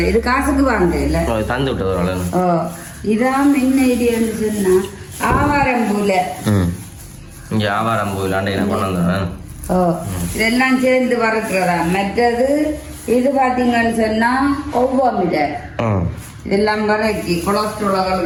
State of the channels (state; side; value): identical; both; correlation 1.00